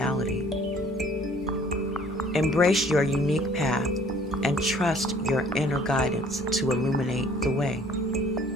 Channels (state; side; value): normal; both; correlation 0.56